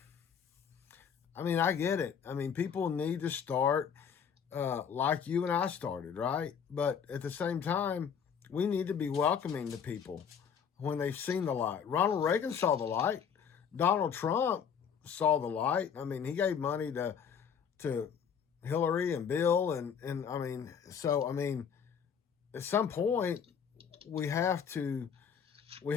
I get it. People need to start like you and I started, right? But at the same time, we need to be welcoming to people when they've seen the light. Ronald Reagan saw the light. Donald Trump saw the light. He gave money to Hillary and Bill. At some point, we have to we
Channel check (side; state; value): right; quieter; 7.4 dB